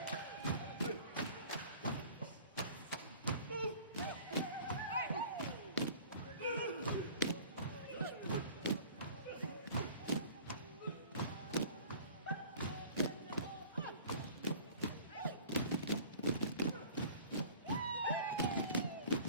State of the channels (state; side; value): inverted; both; correlation -0.47